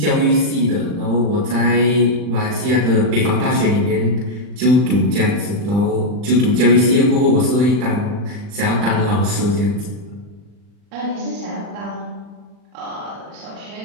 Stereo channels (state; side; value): late; left; 40 ms